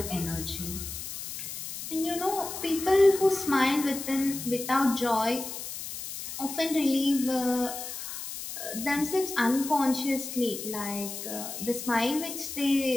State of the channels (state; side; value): noise; left; hiss, 8 dB below the sound